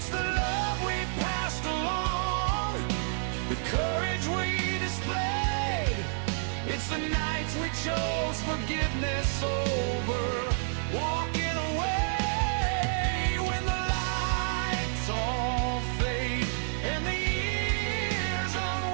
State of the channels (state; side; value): silent; left; digital silence